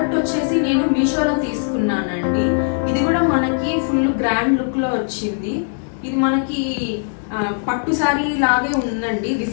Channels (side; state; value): right; silent; digital silence